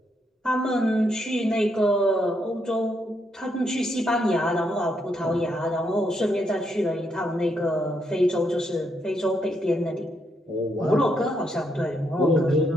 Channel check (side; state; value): both; normal; correlation 0.77